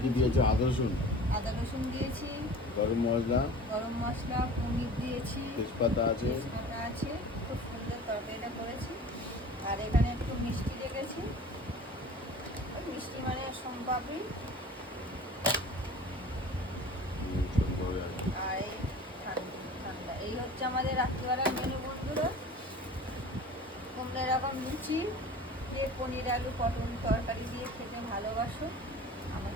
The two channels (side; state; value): both; normal; correlation 0.41